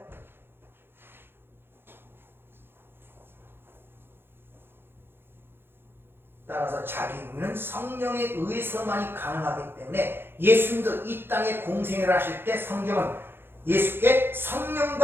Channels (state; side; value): late; left; 0.10 ms